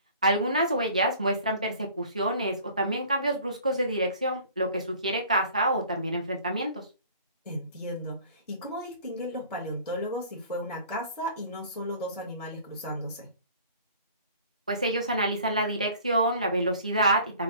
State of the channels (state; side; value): inverted; both; correlation -0.49